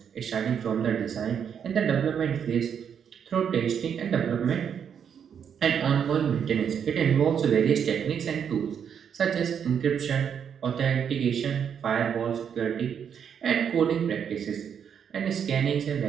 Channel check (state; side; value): quieter; left; 7.8 dB